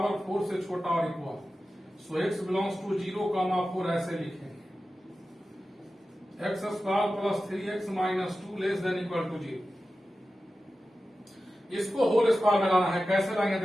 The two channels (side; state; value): both; normal; correlation 0.94